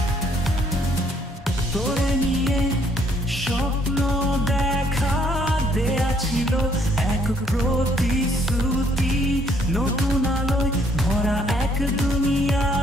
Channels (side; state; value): both; normal; correlation 0.66